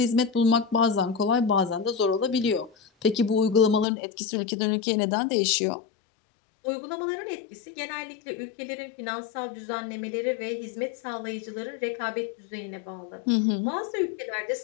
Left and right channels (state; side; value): drops out; right; at 3.9 s